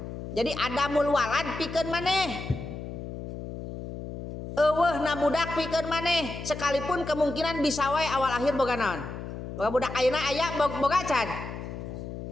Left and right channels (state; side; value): noise; left; hum, 9 dB below the sound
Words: jadi adamul walad pikeun maneh eueuhna budak pikeun maneh sekalipun kemungkinan bisa wae awal akhir boga naon boga budak ayeuna aya boga acan